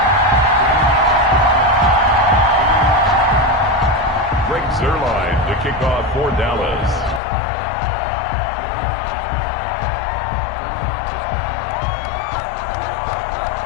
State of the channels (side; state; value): right; drops out; at 7.2 s